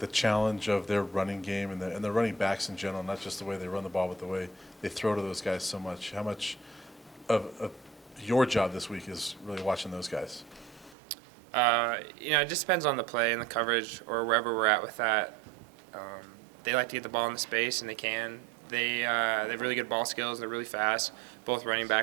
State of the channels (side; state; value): left; drops out; at 11.0 s